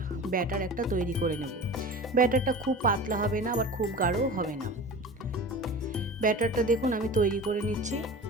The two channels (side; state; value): both; normal; correlation 0.35